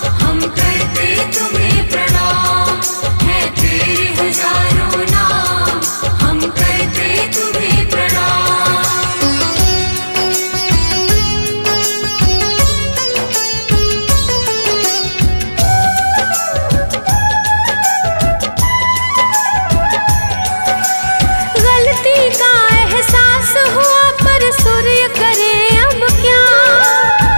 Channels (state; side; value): inverted; both; correlation -1.00